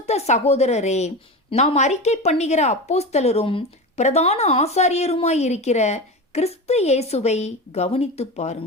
சகோதரரே, நாம் அறிக்கை பண்ணுகிற அப்போஸ்தலரும் பிரதான ஆசாரியருமாயிருக்கிற கிறிஸ்து இயேசுவை கவனித்து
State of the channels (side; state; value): both; normal; correlation 0.25